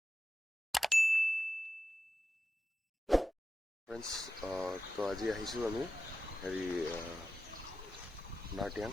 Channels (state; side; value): normal; both; correlation 0.92